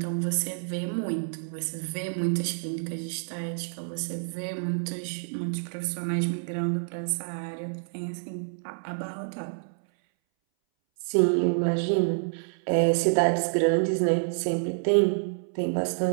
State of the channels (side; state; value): left; silent; 59 dB below the other